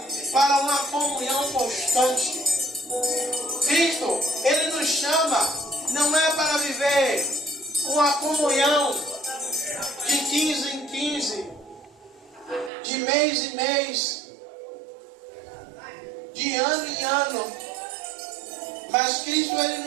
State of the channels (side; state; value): left; drops out; at 12.7 s